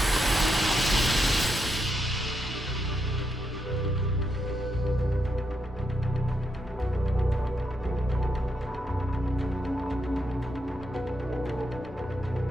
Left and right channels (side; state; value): both; normal; correlation 0.82